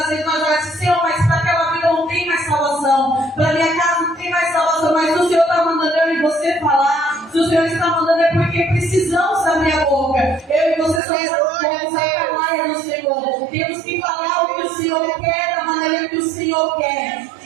vezes nós vamos dizer: Senhor, mas para aquela vida não tem mais salvação, para minha casa não tem mais salvação, mas o Senhor está mandando eu e você falar. Se o Senhor está mandando é porque precisamos abrir a boca. Eu e você somos a palavra do Senhor. Temos que falar o que o Senhor quer, da maneira que o Senhor quer.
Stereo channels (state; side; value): drops out; left; at 11.0 s